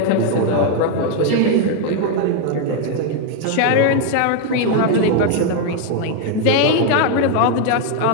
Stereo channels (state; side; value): different; both; correlation 0.01